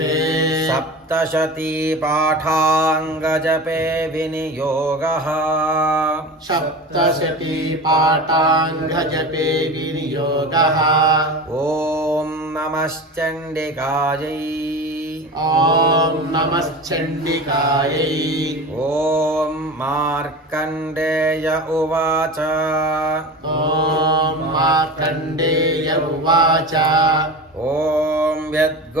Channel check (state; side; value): normal; both; correlation 0.31